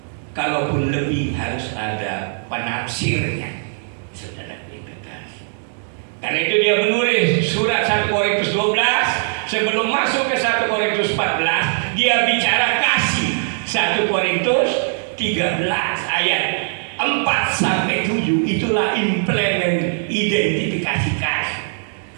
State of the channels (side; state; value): left; silent; 66 dB below the other